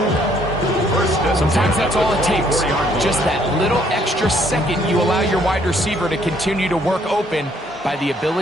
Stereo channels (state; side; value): normal; both; correlation 0.66